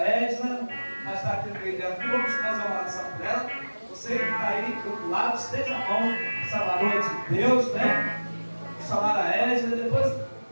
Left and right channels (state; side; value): inverted; both; correlation -1.00